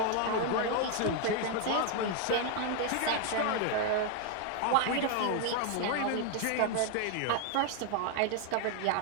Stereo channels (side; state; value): both; different; correlation 0.01